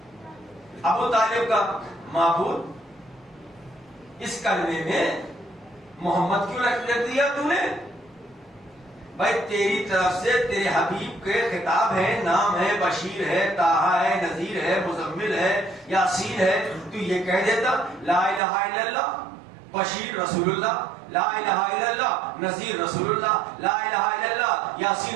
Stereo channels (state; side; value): drops out; left; at 18.4 s